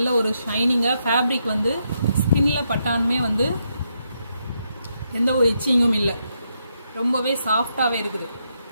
ஒரு ஷைனிங்காக, ஃபேப்ரிக் வந்து ஸ்கின்ல பட்டானுமே வந்து எந்த ஒரு இச்சிங்கும் இல்லை, ரொம்பவே சாஃப்டாகவே இருக்குது.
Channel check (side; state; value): both; inverted; correlation -0.80